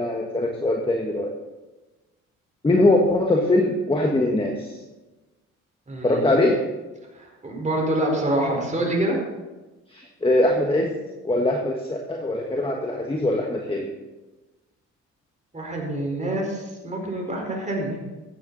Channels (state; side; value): normal; both; correlation 0.58